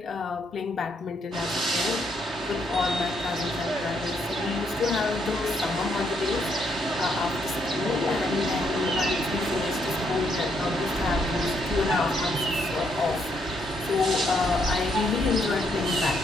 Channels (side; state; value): both; normal; correlation 0.74